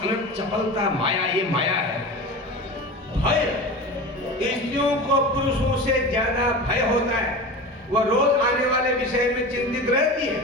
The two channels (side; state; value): both; normal; correlation 0.31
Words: चपलता, माया, ये माया है। भय, स्त्रियों को पुरुषों से ज्यादा भय होता है, वह रोज आने वाले विषय में चिंतित रहती है।